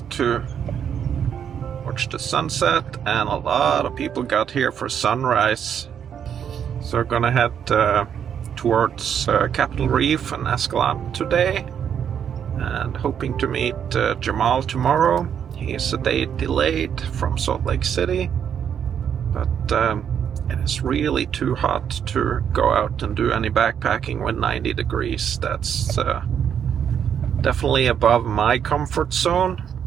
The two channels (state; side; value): quieter; left; 8.4 dB